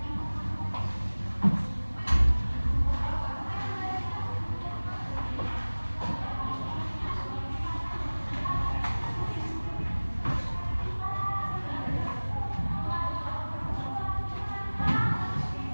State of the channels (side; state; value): both; inverted; correlation -1.00